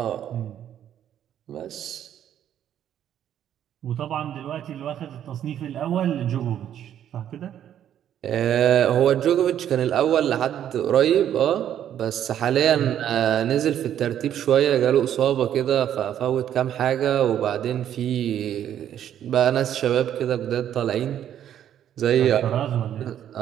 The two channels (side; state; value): left; quieter; 10.4 dB